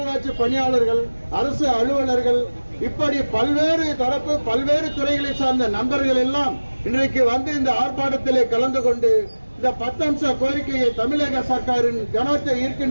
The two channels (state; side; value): inverted; both; correlation -1.00